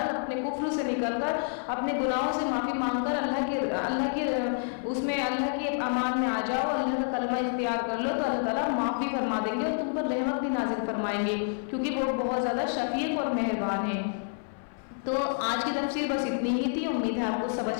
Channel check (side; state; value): right; silent; 57 dB below the other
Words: اپنے کفر سے نکل کر اپنے گناہوں سے معافی مانگ کر اللہ کی امان میں آ جاؤ, اللہ کا کلمہ اختیار کر لو تو اللہ تعالیٰ معافی فرما دیں گے اور تم پر رحمت بھی نازل فرمائیں گے, کیونکہ وہ بہت زیادہ شفیق اور مہربان ہے. تو آج کی تفسیر بس اتنی ہی تھی. امید ہے آپ کو